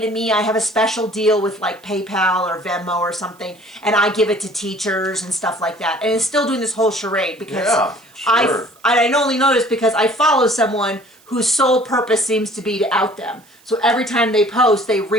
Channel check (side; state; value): right; noise; hiss, 30 dB below the sound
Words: to me. I have a special deal with like PayPal or Venmo or something, and I give it to teachers and stuff like that. And is still doing this whole charade because I only noticed because I follow someone whose sole purpose seems to be to out them. So every time they post, they